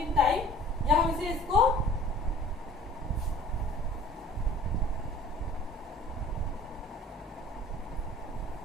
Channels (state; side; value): normal; both; correlation 0.48